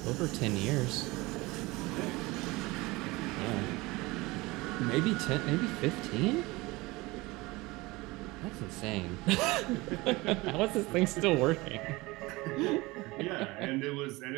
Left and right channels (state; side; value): quieter; left; 22.2 dB